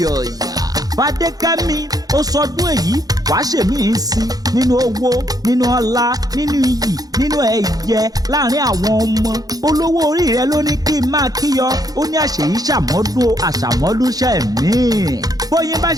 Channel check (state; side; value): late; left; 0.18 ms